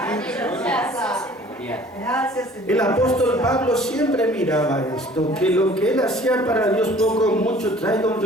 El apóstol Pablo siempre miraba esto, que lo que él hacía para Dios poco o mucho traiga un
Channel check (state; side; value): normal; both; correlation 0.51